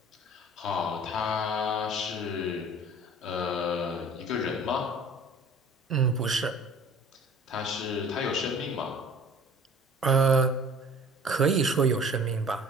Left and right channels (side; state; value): both; normal; correlation 0.48